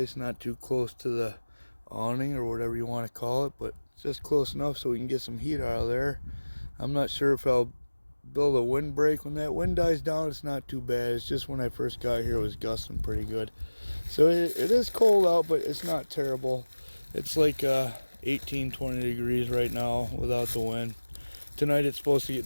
not too close to the awning or whatever you want to call it, but just close enough so we can get some heat out of there. I'm not sure if I'll build a windbreak. When that wind dies down, it's not too bad. It's just when I first got here, it was gusting pretty good. So it is cold out, but it's not terrible. It's like 18, 20 degrees right now without the wind. Tonight it's supposed to get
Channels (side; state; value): both; inverted; correlation -1.00